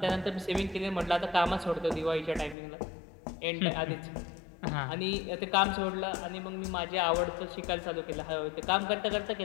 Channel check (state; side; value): drops out; right; at 2.6 s